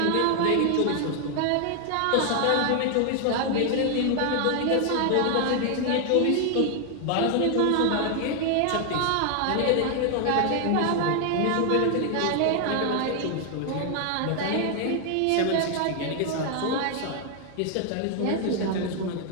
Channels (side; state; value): both; different; correlation 0.00